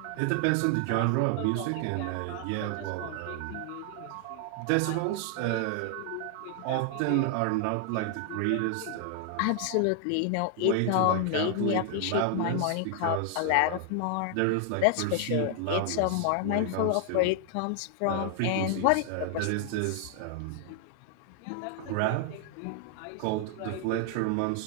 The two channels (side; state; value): both; different; correlation 0.00